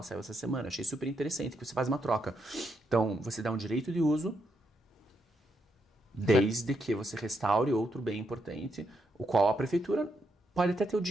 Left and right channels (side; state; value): both; normal; correlation 0.80